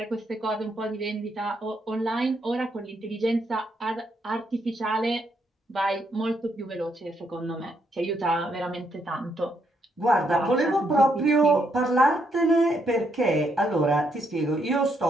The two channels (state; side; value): normal; both; correlation 0.76